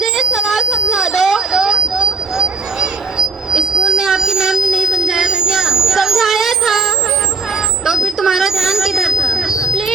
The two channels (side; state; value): left; quieter; 4.0 dB